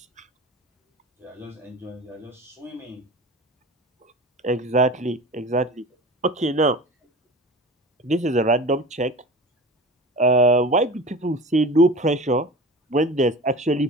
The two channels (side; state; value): both; normal; correlation 0.35